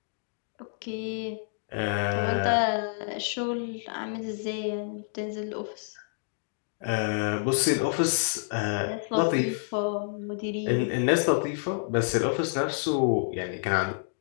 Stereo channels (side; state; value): right; silent; digital silence